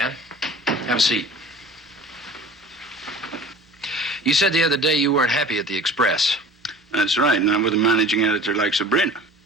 Have a seat. You said the other day you weren't happy at the Express. That's right, not with a managing editor like Sabrina.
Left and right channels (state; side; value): normal; both; correlation 0.43